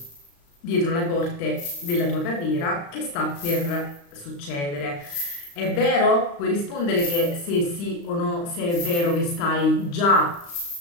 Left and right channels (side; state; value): right; late; 35 ms